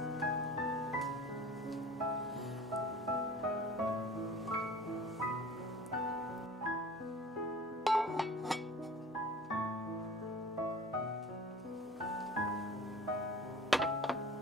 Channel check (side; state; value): both; normal; correlation 0.43